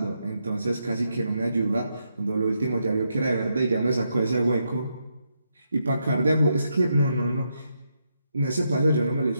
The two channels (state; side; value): inverted; both; correlation -0.81